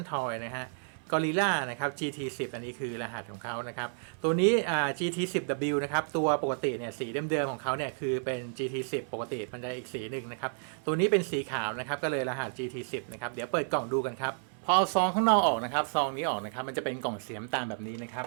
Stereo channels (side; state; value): left; silent; 57 dB below the other